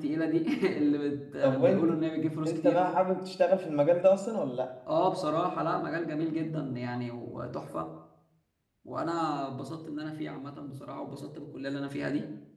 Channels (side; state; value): both; identical; correlation 1.00